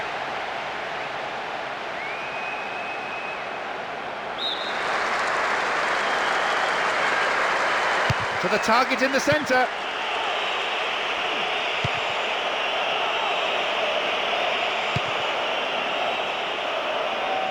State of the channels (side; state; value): both; identical; correlation 1.00